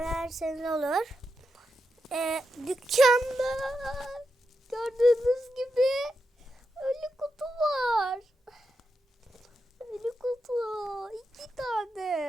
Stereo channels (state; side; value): normal; both; correlation 0.86